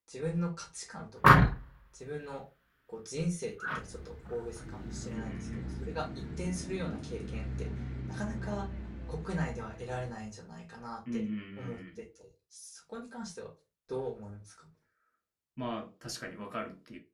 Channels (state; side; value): identical; both; correlation 1.00